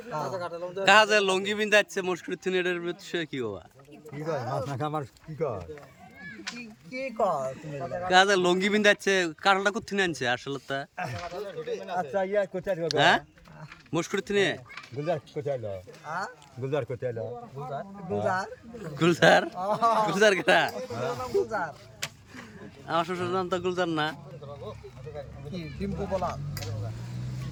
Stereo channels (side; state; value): both; identical; correlation 1.00